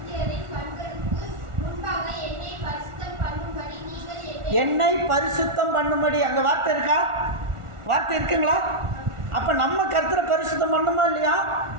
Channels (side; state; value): left; late; 1.4 ms